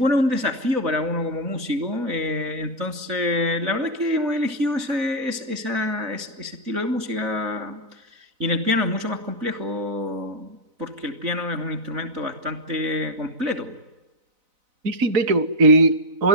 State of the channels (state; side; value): late; left; 4.0 ms